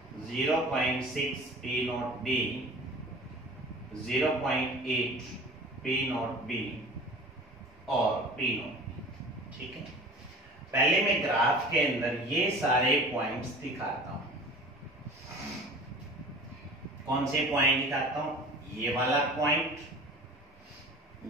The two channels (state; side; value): normal; both; correlation 0.41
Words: 0.6 P naught B, 0.8 P naught B और P naught B। ठीक है, पहले मैं ग्राफ के अंदर ये सारे पॉइंट्स दिखाता हूं। कौन से पॉइंट दिखाता हूं? ये वाला पॉइंट,